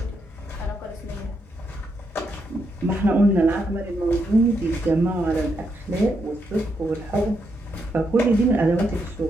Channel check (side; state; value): both; normal; correlation 0.80